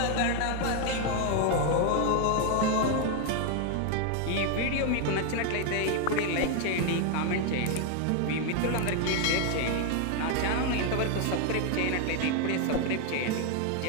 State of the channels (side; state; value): both; different; correlation 0.01